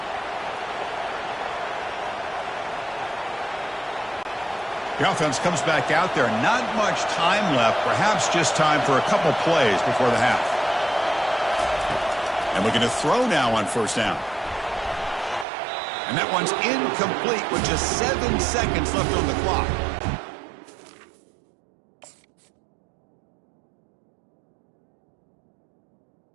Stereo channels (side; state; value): left; drops out; at 15.5 s